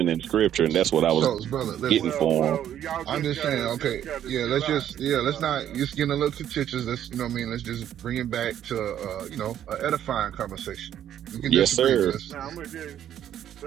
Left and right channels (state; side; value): quieter; left; 10.6 dB